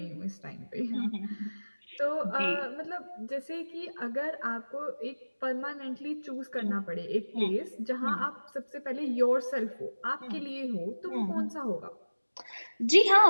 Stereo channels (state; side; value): inverted; both; correlation -1.00